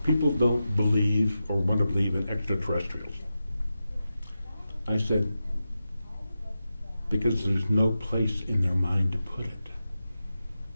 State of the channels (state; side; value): inverted; both; correlation -0.91